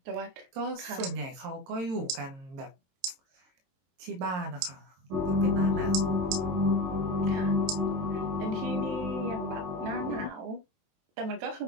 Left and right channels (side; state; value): left; late; 22 ms